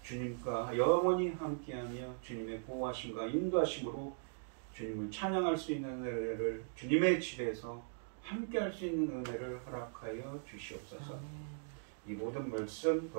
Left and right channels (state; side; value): silent; left; digital silence